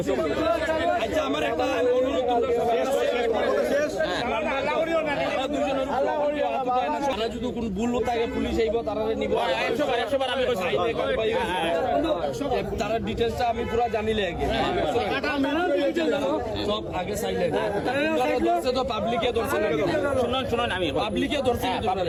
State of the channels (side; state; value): both; identical; correlation 1.00